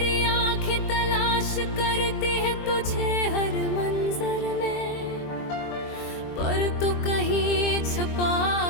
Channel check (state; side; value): late; right; 23 ms